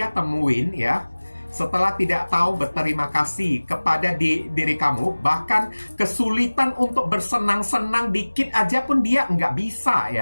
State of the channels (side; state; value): both; inverted; correlation -1.00